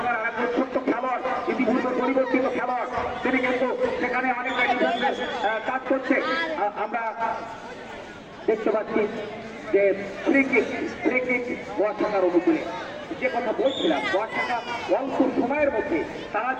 আরেকজন ছোট্ট খেলোয়াড়, ইতিপূর্বে পরিবর্তিত খেলোয়াড়, তিনি কিন্তু সেখানে অনেকটা ডিফেন্সের কাজ করছে। আমরা দেখতে পাচ্ছি যে ফ্রি কিক বর্ষাকার অনুকূলে। যে কথা বলছিলাম, বর্ষাকা অল্প সময়ের মধ্যে তারা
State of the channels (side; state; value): both; identical; correlation 1.00